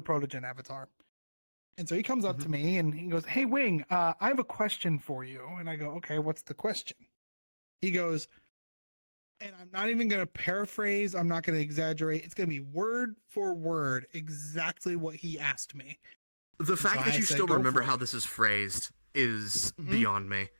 avatar. And so he comes up to me and he goes, "Hey Wing, I have a question for you." And I go, "Okay, what's the question?" He goes, and I'm not even going to paraphrase, I'm not going to exaggerate. It's going to be word for word exactly what he asked me. The fact so that I you said, still "Go remember for it." how this is phrased is beyond me.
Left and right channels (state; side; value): inverted; both; correlation -1.00